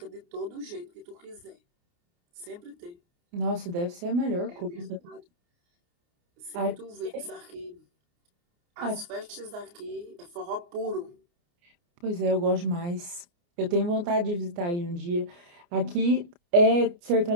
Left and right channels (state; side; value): late; left; 29 ms